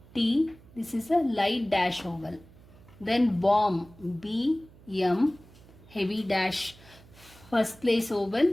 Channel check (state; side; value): noise; right; hum, 24 dB below the sound